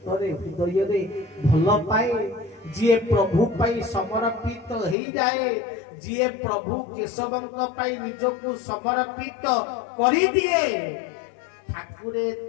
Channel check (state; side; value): drops out; right; at 5.0 s